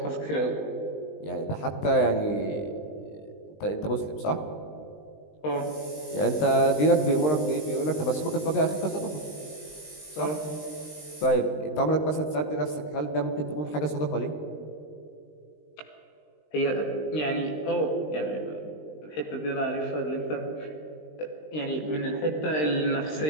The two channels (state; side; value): late; right; 20 ms